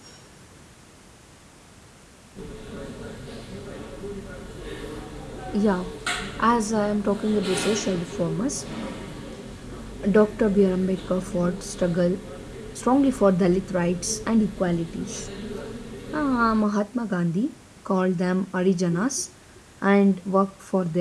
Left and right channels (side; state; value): both; identical; correlation 1.00